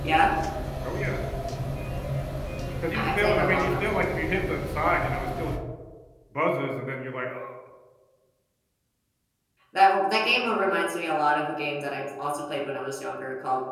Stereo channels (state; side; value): identical; both; correlation 1.00